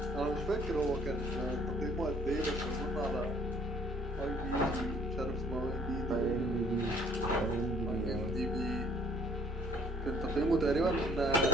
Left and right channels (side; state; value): both; normal; correlation 0.61